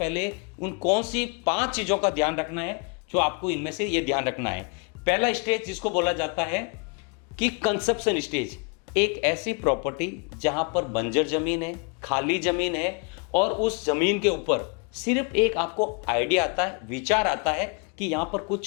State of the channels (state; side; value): quieter; right; 34.6 dB